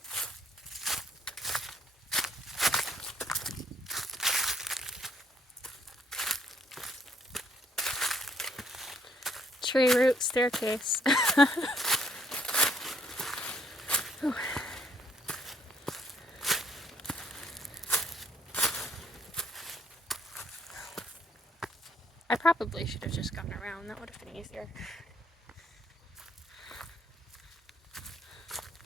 Tree root staircase. I probably should have just gone around. That would have been easier.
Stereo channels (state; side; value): normal; both; correlation 0.67